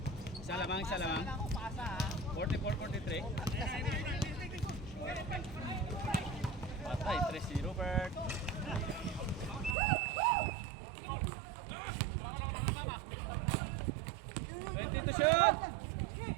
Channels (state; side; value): drops out; left; at 9.8 s